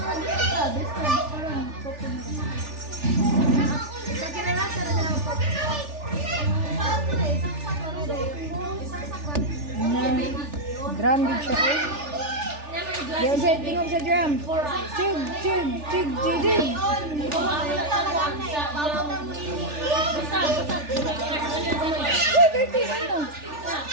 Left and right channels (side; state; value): left; late; 3.4 ms